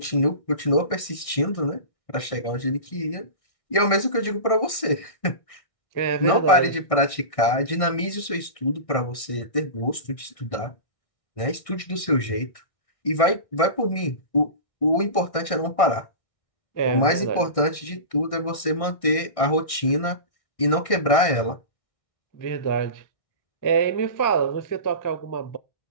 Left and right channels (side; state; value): right; late; 1.6 ms